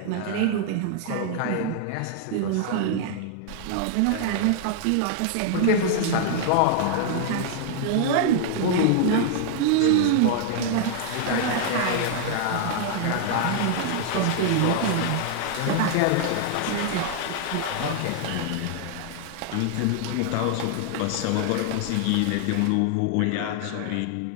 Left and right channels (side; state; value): both; different; correlation -0.01